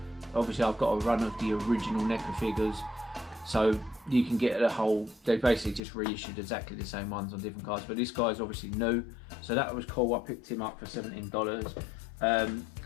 Obviously I've got a run of the original NECA figures, so you can get the whole, they basically just reissued exactly the same ones on different cards, but this guy's obviously new, so that was cool. I picked him up for $17.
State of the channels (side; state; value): right; drops out; at 5.8 s